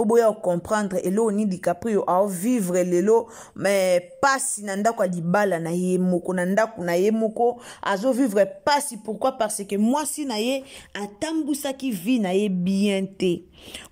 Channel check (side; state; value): both; identical; correlation 1.00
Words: boya comprendre elo ni DiCaprio a vivre lelo mais pasi na ndako libala na ye moko na ndako na ye moko azo vivre pasi pourquoi parce que mwasi na ye atambusa ki vie na ye bien te.